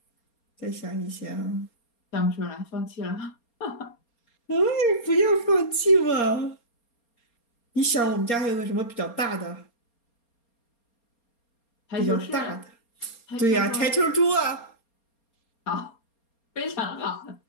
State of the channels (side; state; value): right; late; 4.3 ms